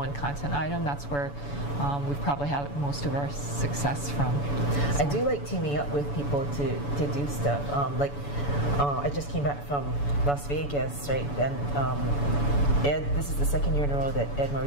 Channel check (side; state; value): right; late; 7.0 ms